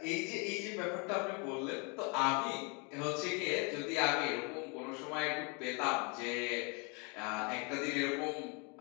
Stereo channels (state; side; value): quieter; right; 32.7 dB